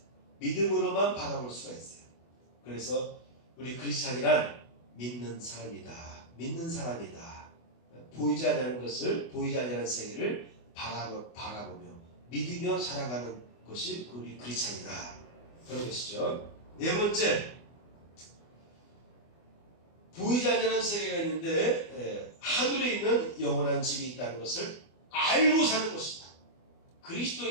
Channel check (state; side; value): late; right; 24 ms